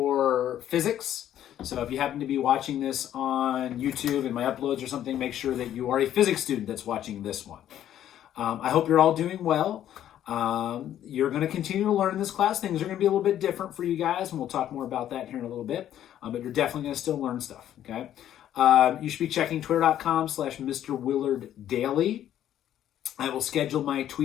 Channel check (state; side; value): quieter; right; 11.3 dB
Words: physics. So if you happen to be watching this on YouTube and my uploads or something, make sure that you are a physics student that's watching this one. I hope you're all doing well. You're going to continue to learn in this class. Things are going to be a little bit different for you guys, and we'll talk more about that here in a little bit. But you're definitely going to still learn stuff, okay? You should be checking twitter.com/Mr. Willard Daily. I will schedule my